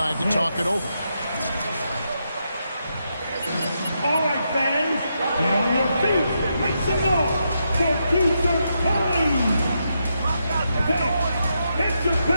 to talk it over. All right, fans, get on your feet. Make some noise for future time. Hey, it's your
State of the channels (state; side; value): inverted; both; correlation -0.82